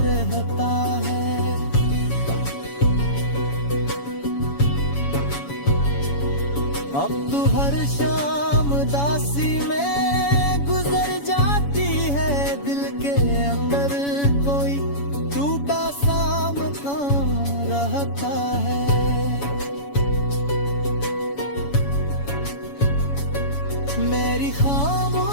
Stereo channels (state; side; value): late; right; 7.1 ms